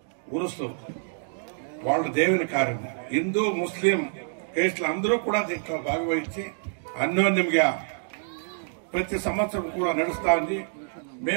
ఉరుసు వాళ్ళ దేవుని కార్యం హిందూ ముస్లిం కేసులు అందరూ కూడా దీంట్లో భాగవహించి అన్యోన్యంగా ప్రతి సంవత్సరం కూడా నడుస్తా ఉంది.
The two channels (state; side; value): silent; left; digital silence